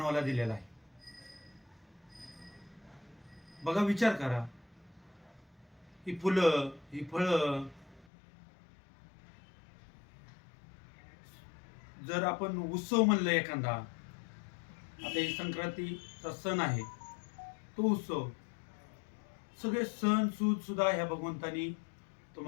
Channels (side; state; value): right; drops out; at 8.1 s